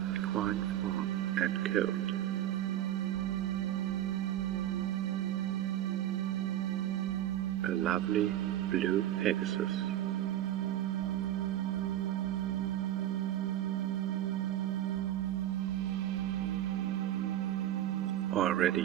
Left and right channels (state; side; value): quieter; left; 12.4 dB